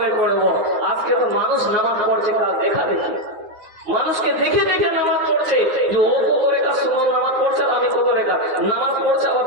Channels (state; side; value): late; left; 9.5 ms